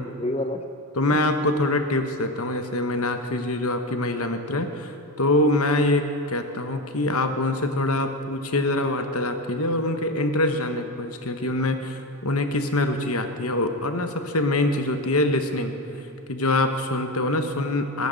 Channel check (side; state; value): both; normal; correlation 0.19